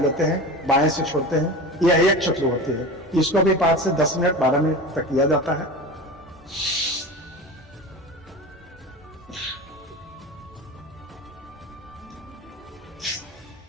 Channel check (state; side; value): normal; both; correlation 0.30